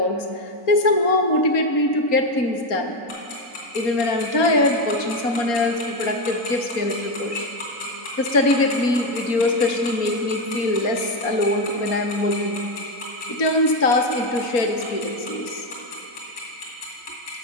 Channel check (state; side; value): late; right; 4.3 ms